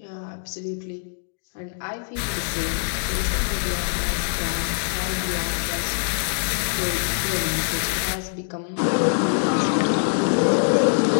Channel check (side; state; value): right; silent; digital silence